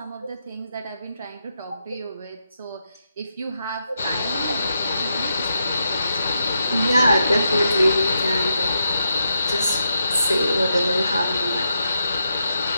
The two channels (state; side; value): inverted; both; correlation -0.83